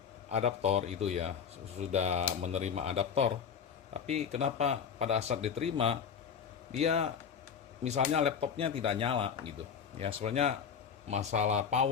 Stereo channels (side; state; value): right; quieter; 7.1 dB